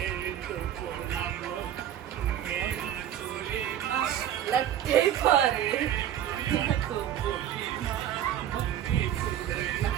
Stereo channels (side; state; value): left; quieter; 10.9 dB